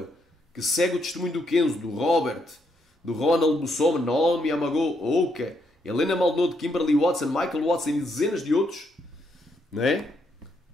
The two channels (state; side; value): normal; both; correlation 0.76